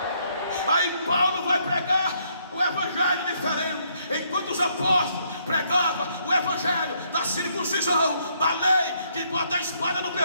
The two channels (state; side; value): inverted; both; correlation -0.71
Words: Aí Paulo vai pregar o evangelho diferente, enquanto os apóstolos pregavam o evangelho da circuncisão, da lei, que bota a espada no